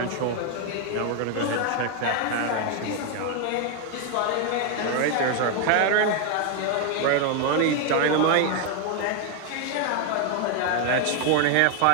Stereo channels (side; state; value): both; different; correlation 0.01